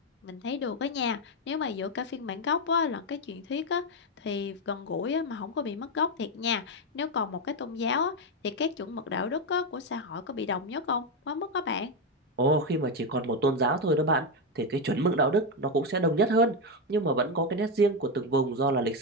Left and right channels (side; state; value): both; normal; correlation 0.08